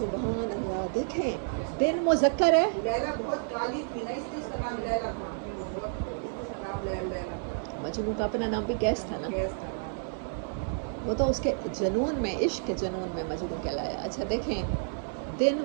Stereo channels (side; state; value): left; silent; digital silence